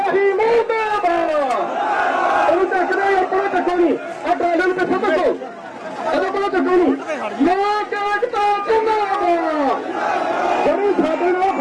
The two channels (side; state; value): both; identical; correlation 1.00